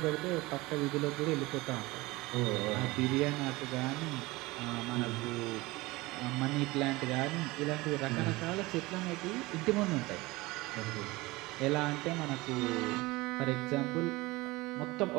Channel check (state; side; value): quieter; left; 21.3 dB